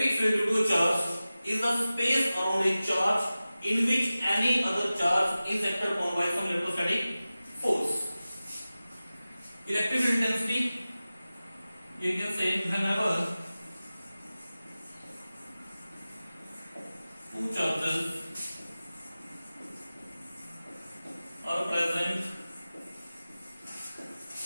field due to a charge is the space around a charge in which any other charge is acted upon by some electrostatic force. Electric field intensity, you can say whenever two charges are present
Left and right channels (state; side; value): inverted; both; correlation -0.96